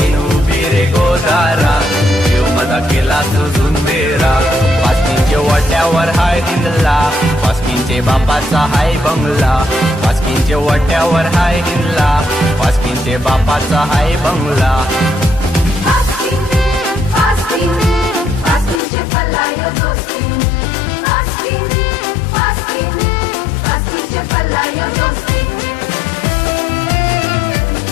उभी रे गोदारा जीव मजा केला तुझून बेरा पास्किनच्या वाट्यावर हाय हिंदला पास्किनचे बापाचा हाय बंगला पास्किनच्या वाट्यावर हाय हिंदला पास्किनचे बापाचा हाय बंगला पास्किन पास्किन पास्किनचे पल्लायो दोस्ती पास्किन पास्किन पास्किनचे पल्लायो दोस्ती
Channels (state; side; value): drops out; right; at 18.8 s